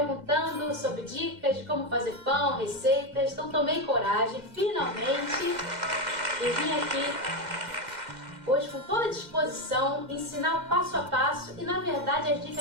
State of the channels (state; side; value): late; left; 2.1 ms